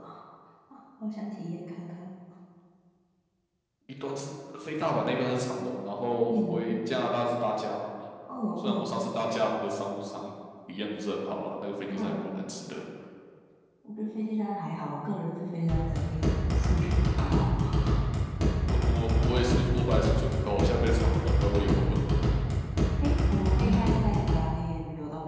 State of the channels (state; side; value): identical; both; correlation 1.00